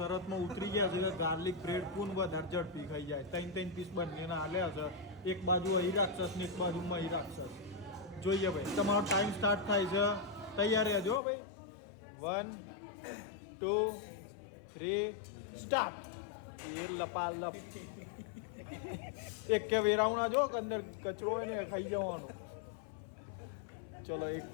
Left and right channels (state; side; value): drops out; right; at 11.2 s